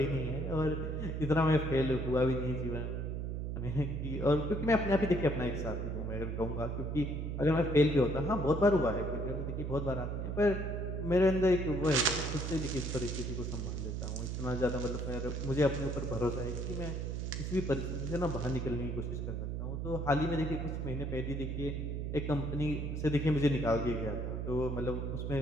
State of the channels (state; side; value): noise; right; hum, 3 dB below the sound